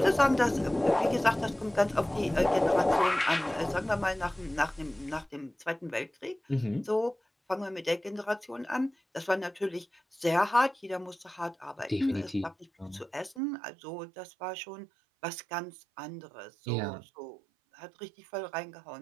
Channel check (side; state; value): left; drops out; at 13.4 s